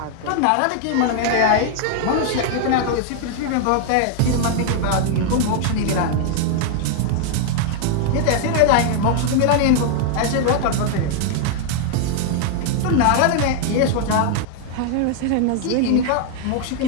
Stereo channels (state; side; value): different; both; correlation 0.00